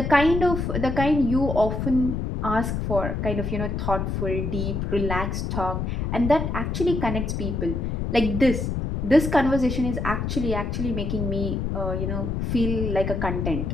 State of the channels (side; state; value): left; noise; rumble, 2 dB below the sound